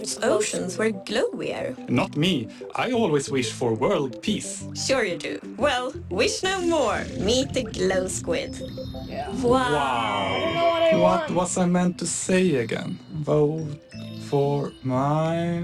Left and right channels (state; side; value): identical; both; correlation 1.00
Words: oceans were glowier? Not me. I always wish for world peace. Sure you do. Well, wish no more. Meet the glow squid. Yeah. Wow. What was I meant to say again? Vote for